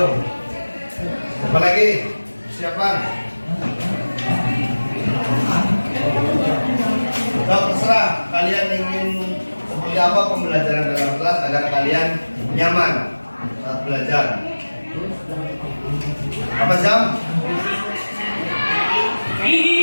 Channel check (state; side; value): inverted; both; correlation -1.00